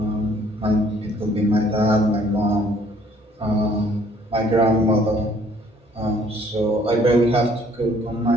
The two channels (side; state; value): both; normal; correlation 0.60